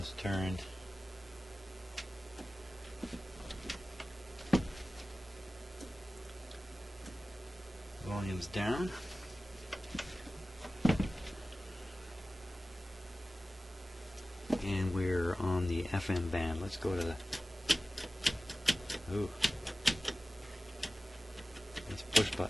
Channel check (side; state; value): both; normal; correlation 0.96